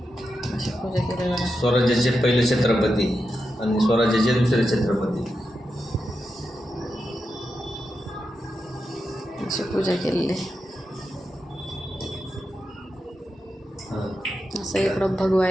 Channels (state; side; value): normal; both; correlation 0.88